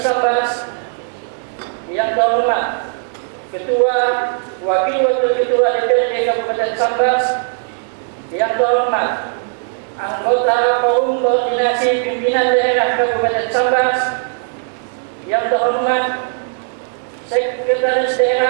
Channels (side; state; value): left; silent; digital silence